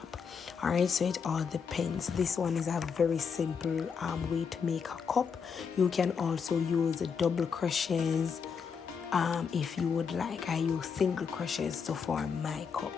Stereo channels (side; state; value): right; quieter; 6.2 dB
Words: Alright, so it all depends. This one is a very simple way to make a cup. You can also use double crochets if you would like. I use single crochets to form my cup.